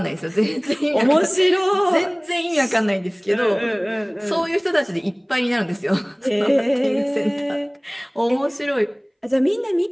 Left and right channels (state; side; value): identical; both; correlation 1.00